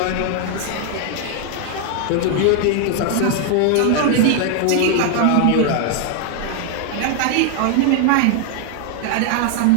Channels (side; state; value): both; different; correlation 0.00